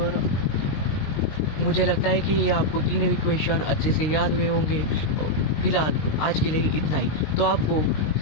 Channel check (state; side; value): late; right; 19 ms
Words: मुझे लगता है कि ये आपको 3 इक्वेशन अच्छे से याद हुए होंगे। फिलहाल आज के लिए इतना ही। तो आपको